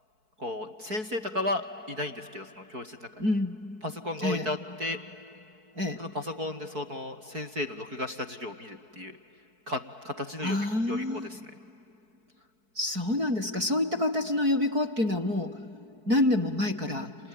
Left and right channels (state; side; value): late; left; 4.6 ms